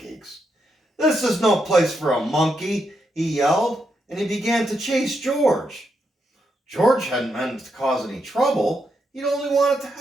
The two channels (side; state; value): both; normal; correlation 0.81